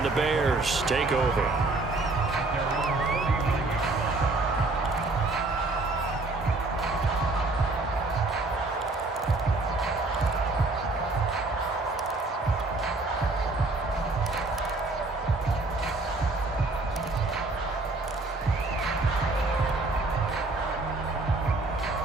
the Bears take over.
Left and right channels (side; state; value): left; quieter; 3.2 dB